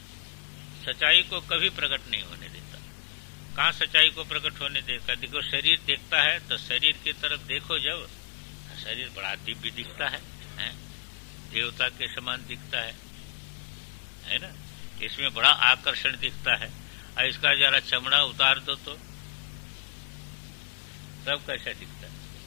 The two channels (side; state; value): right; silent; digital silence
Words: सच्चाई को कभी प्रकट नहीं होने देता। कहाँ सच्चाई को प्रकट होने देता? देखो शरीर देखता है तो शरीर की तरफ देखो, जब शरीर बड़ा दिव्य दिखता है, देवता के समान दिखता है ना, इसमें बड़ा आकर्षण दिखता है। और इसका जरा चमड़ा उतार दो तो तब कैसा दिखता है,